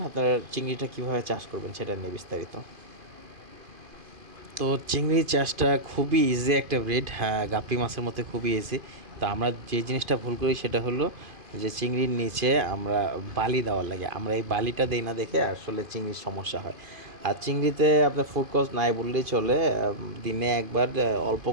আপনারা চিংড়িটা কীভাবে চাষ করবেন সেটা নিয়ে বিস্তারিত। তো চিংড়ি চাষটা খুবই ইজি একটা ব্রিড, হ্যাঁ, গাপ্পি মাছের মতো খুবই ইজি। তো আমরা যে জিনিসটা ভুল করি সেটা হলো যে চিংড়ির নিচে আমরা বালি দেওয়ার লাগে, আমরা এই বালিটা দিই না দেখে আসলে চিংড়ির সমস্যা হয়। আর চিংড়িতে আপনার ফুড কস্ট নাই বললেই চলে, দিনে একবার অল্প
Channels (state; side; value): late; left; 2.5 ms